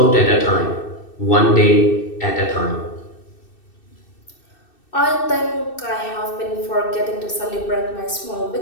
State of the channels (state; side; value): late; right; 2.6 ms